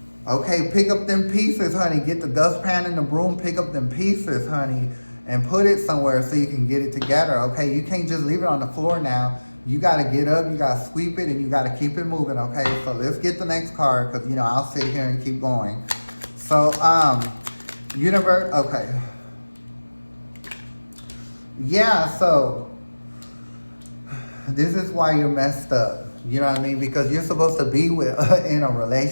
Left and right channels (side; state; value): both; inverted; correlation -1.00